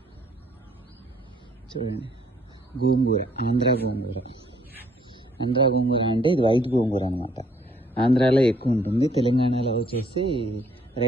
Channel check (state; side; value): normal; both; correlation 0.64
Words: చూడండి, గోంగూర, ఆంధ్ర గోంగూర. ఆంధ్ర గోంగూర అంటే ఇది వైట్ గోంగూర అనమాట. ఆంధ్రాలో ఎక్కువ ఉంటుంది, తెలంగాణలో వచ్చేసి